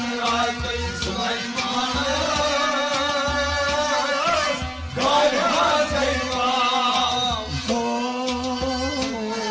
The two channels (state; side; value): identical; both; correlation 1.00